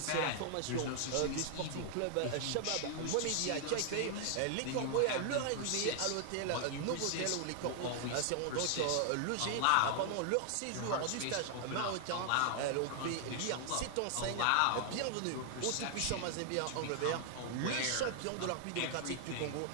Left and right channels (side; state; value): both; different; correlation 0.00